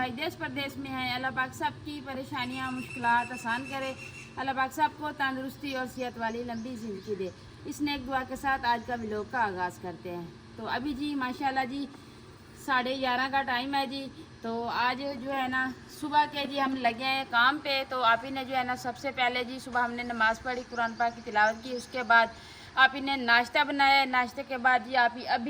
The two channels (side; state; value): both; identical; correlation 1.00